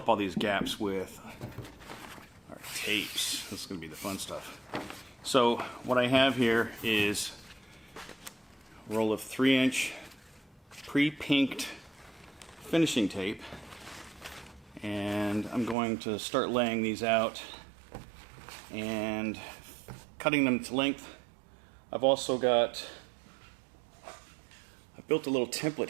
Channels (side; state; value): left; drops out; at 15.8 s